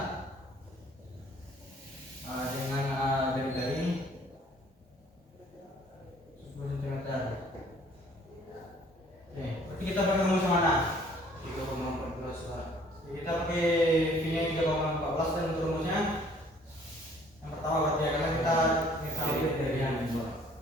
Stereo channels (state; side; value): normal; both; correlation 0.57